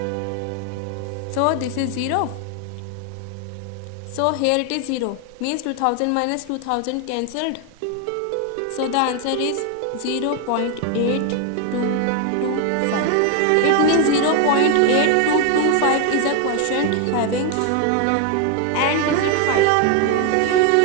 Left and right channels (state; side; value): different; both; correlation 0.01